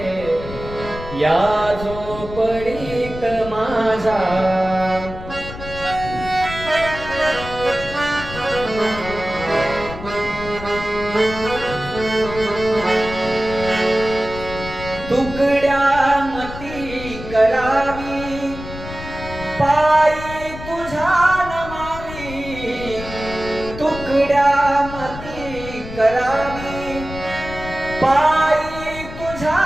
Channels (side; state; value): left; noise; rumble, 11 dB below the sound